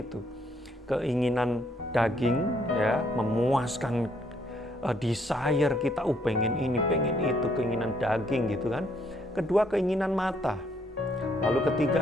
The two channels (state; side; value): normal; both; correlation 0.70